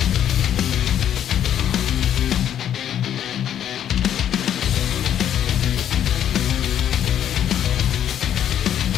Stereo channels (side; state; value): right; quieter; 10.2 dB